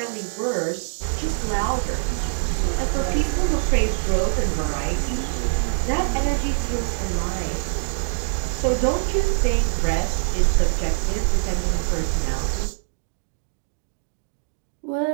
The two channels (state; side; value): silent; left; digital silence